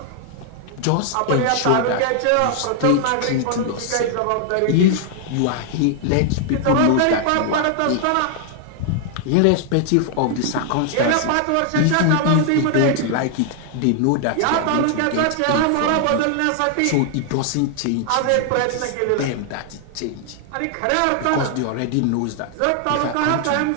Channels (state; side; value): different; both; correlation 0.00